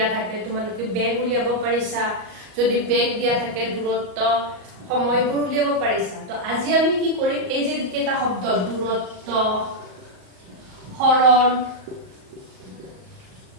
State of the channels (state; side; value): late; left; 38 ms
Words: থাকে তোমালোকে বেগ উলিয়াব পাৰিছা। যদি বেগ দিয়া থাকে দূৰত্ব সময়বোৰ উলিয়াব পাৰিছা। তো আজি আমি কি কৰিম, এই যে কেইটা শব্দ দূৰত্ব, হৰণ,